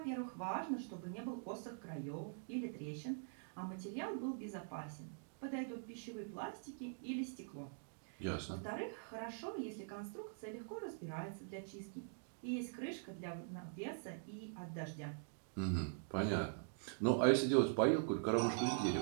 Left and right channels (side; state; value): left; silent; digital silence